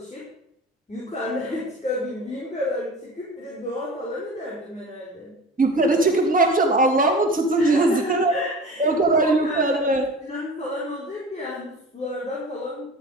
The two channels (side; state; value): both; normal; correlation 0.37